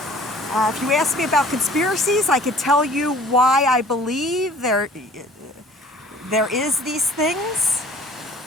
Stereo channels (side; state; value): both; normal; correlation 0.50